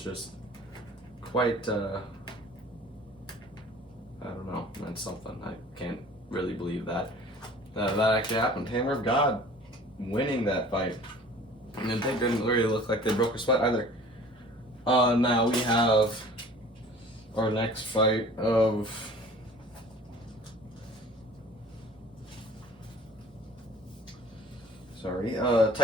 just quite, I don't know, that's something. I can't really believe that. That actually happened. Hammer of God winning that fight. And they didn't really look like they broke a sweat either. Now we have our next fight of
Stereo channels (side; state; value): both; normal; correlation 0.47